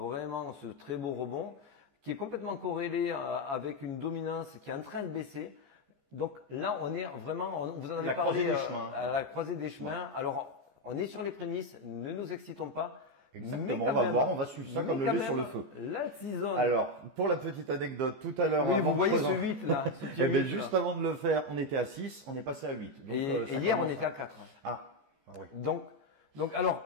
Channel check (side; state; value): left; late; 14 ms